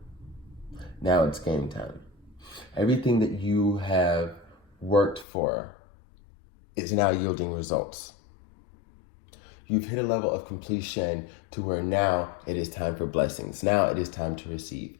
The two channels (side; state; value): right; drops out; at 5.2 s